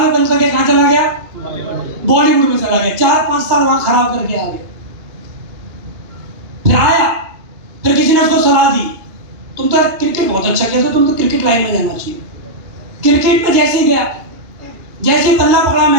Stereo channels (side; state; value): left; late; 2.5 ms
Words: बंद करके कहां चला गया? बॉलीवुड में चला गया, 4-5 साल वहां खराब करके आ गया। फिर आया, फिर किसी ने उसको सलाह दी, तुम तो क्रिकेट बहुत अच्छा खेलते, तुम तो क्रिकेट लाइन में जाना चाहिए। क्रिकेट में जैसे ही गया, जैसे बल्ला पड़ा